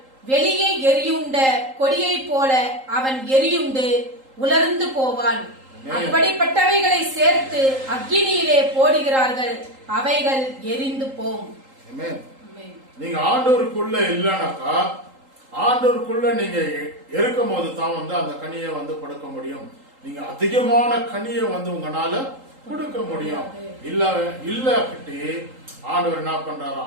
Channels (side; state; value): left; late; 3.8 ms